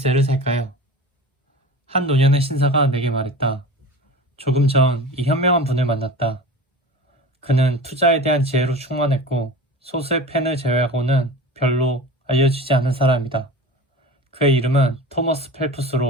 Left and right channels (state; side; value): normal; both; correlation 0.35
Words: 살까요? 한 노년의 신사가 내게 말했다. 조금 전 이 현명한 분을 만났다. 그는 투자에 대한 지혜로 충만했고 소수의 팬을 제외하고는 별로 알려지지 않은 사람이다. 그의 이름은 토머스